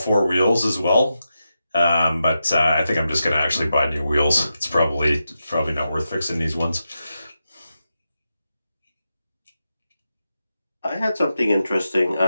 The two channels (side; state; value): both; inverted; correlation -0.88